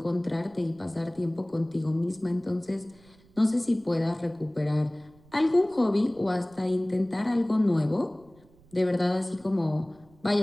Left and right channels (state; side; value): noise; right; rumble, 28 dB below the sound